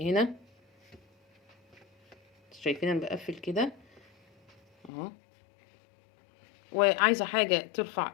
هنا. شايفين انا بقفل كده اهو. وعايزة حاجة ترفع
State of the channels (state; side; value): drops out; right; at 4.9 s